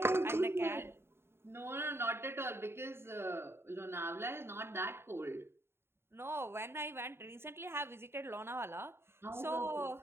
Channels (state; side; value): late; left; 0.12 ms